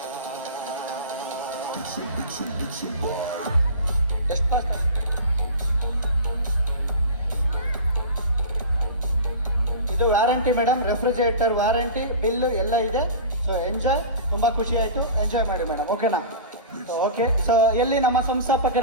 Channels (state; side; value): inverted; both; correlation -0.33